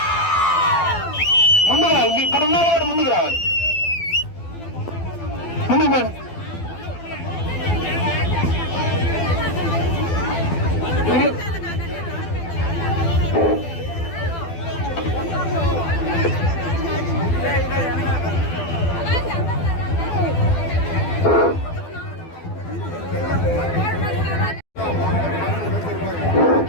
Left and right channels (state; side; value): late; right; 12 ms